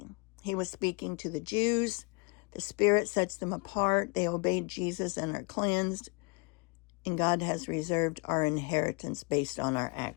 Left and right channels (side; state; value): right; quieter; 30.1 dB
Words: He was speaking to the Jews. The Spirit sets them apart. They obeyed Jesus and are cleansed. And God has reserved our inheritance based on our